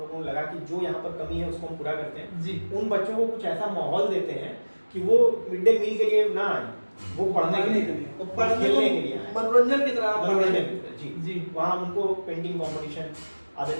को लगा कि जो यहाँ पर कमी है उसको हम पूरा करते हैं जी। उन बच्चों को कुछ ऐसा माहौल देते हैं कि वो मिड डे मील के लिए ना आए, वो पढ़ने के लिए, खेलने के लिए आए, मनोरंजन की तरह मनोरंजन जी जी। वहाँ उनको पेंटिंग कंपटीशन,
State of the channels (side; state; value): both; inverted; correlation -1.00